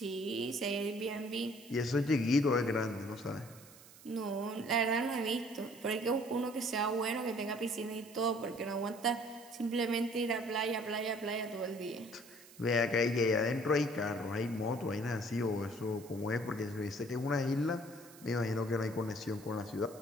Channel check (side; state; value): right; noise; hiss, 21 dB below the sound